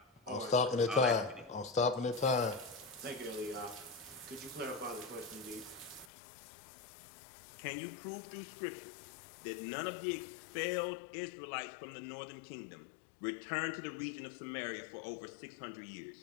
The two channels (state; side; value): drops out; right; at 6.1 s